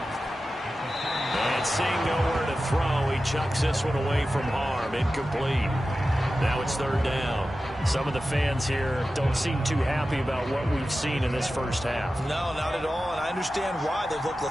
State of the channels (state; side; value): normal; both; correlation 0.94